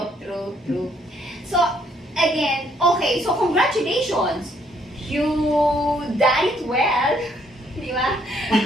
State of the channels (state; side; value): normal; both; correlation 0.68